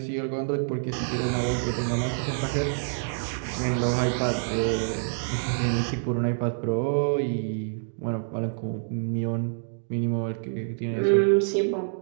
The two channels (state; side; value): silent; left; digital silence